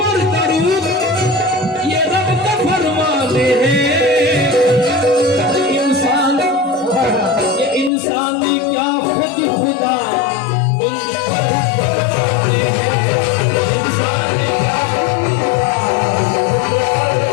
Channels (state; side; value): drops out; right; at 7.9 s